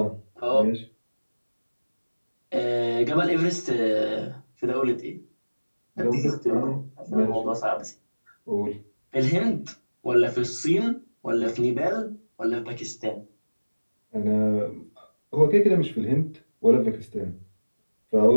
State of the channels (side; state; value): both; inverted; correlation -1.00